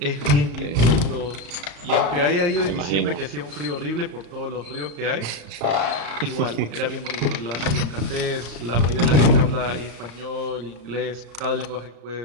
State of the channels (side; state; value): left; late; 35 ms